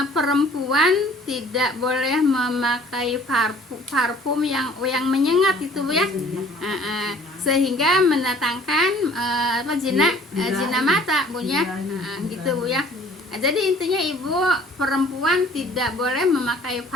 perempuan tidak boleh memakai parfum yang menyengat itu Bu ya, sehingga mendatangkan zina mata Bu ya, gitu Bu ya. Jadi intinya Ibu, perempuan tidak boleh memakai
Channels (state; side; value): normal; both; correlation 0.53